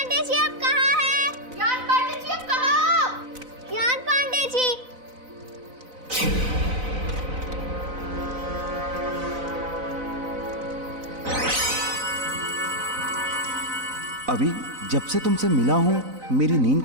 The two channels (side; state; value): left; late; 4.0 ms